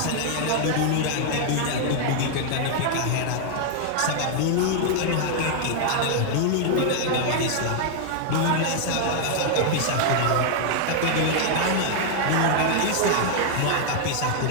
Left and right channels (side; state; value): both; different; correlation 0.00